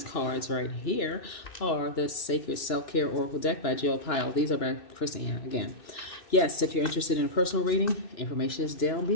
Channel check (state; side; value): late; right; 2.9 ms